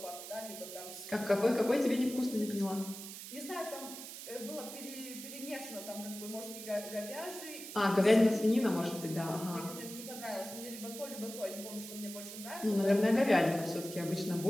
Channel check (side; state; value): right; noise; hiss, 11 dB below the sound